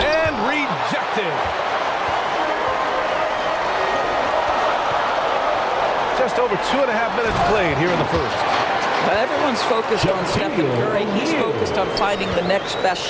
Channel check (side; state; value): both; identical; correlation 1.00